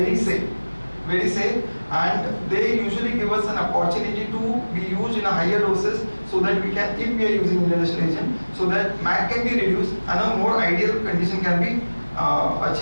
safe, and they usually give us an opportunity to be used in a higher doses, so that we can, if we are using inhalation agent, so that MAC can be reduced and a more ideal condition can be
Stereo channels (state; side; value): inverted; both; correlation -1.00